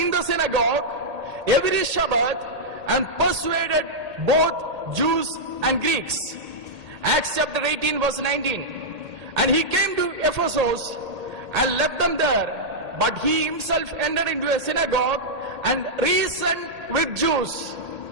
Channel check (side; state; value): left; late; 1.8 ms